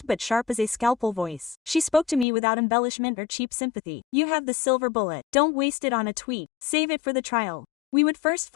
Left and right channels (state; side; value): drops out; right; at 2.2 s